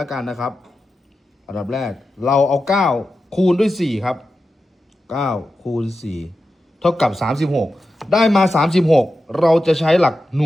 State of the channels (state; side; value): normal; both; correlation 0.91